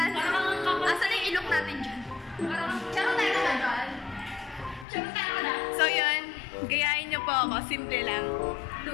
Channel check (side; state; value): right; drops out; at 4.9 s